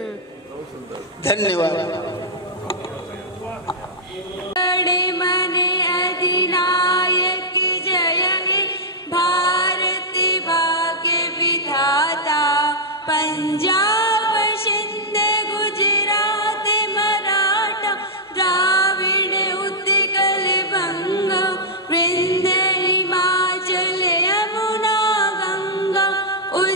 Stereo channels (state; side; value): normal; both; correlation -0.07